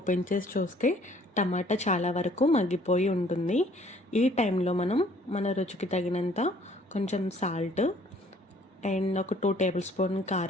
చేసి చూస్తే టమాటా చాలా వరకు మగ్గిపోయి ఉంటుంది. ఈ టైంలో మనం మన రుచికి తగినంత కొంచెం సాల్ట్ అండ్ ఒక 2 టేబుల్ స్పూన్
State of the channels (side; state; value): both; normal; correlation 0.58